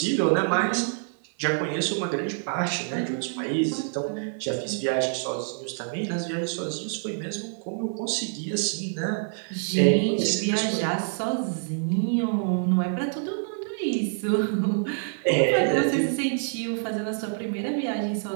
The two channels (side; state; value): left; silent; 61 dB below the other